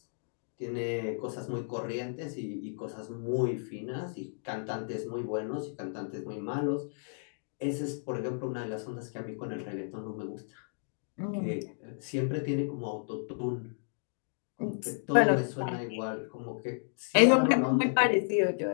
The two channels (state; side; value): silent; right; digital silence